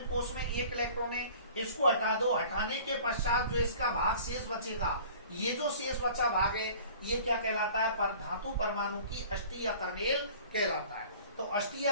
कोष में 1 इलेक्ट्रॉन है, इसको हटा दो, हटाने के पश्चात जो इसका भाग शेष बचेगा, ये जो शेष बचा भाग है, ये क्या कहलाता है, पर धातु परमाणु की अष्टि या कर्नेल कहलाता है। तो अष्टि या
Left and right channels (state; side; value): inverted; both; correlation -0.47